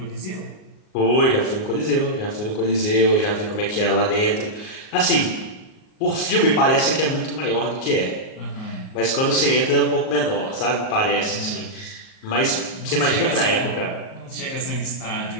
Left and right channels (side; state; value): right; late; 38 ms